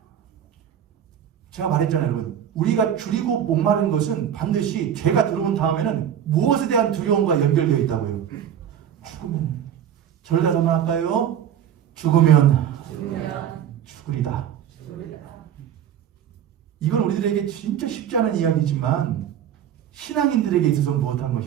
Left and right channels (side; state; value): left; quieter; 9.5 dB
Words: 제가 말했잖아요, 여러분. 우리가 줄이고 목마른 것은 반드시 죄가 들어온 다음에는 무엇에 대한 두려움과 연결되어 있다고요? 죽으면. 저를 다시 한번 할까요? 죽으면 죽으리다. 이건 우리들에게 진짜 쉽지 않은 이야기지만 신앙인들에게 있어서 무엇한